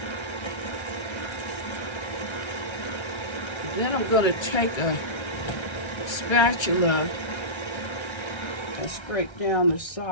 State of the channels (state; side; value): late; right; 1.3 ms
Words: Then I'm going to take a spatula and scrape down the